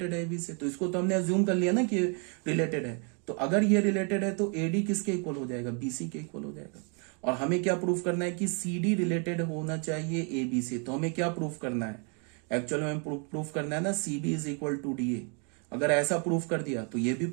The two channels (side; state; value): left; quieter; 37.6 dB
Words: है ए बी से। तो इसको तो हमने अज्यूम कर लिया ना कि रिलेटेड है। तो अगर ये रिलेटेड है तो ए डी किसके इक्वल हो जाएगा, बी सी के इक्वल हो जाएगा। और हमें क्या प्रूफ करना है कि सी डी रिलेटेड होना चाहिए ए बी से। तो हमें क्या प्रूफ करना है, एक्चुअल में प्रूफ करना है ना c b is equal to d a. अगर ऐसा प्रूफ कर दिया तो ये भी